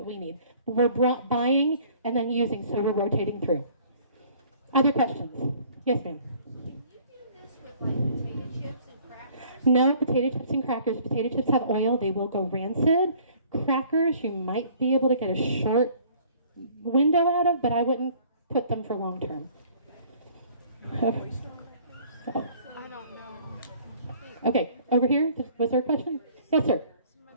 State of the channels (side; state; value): both; inverted; correlation -0.55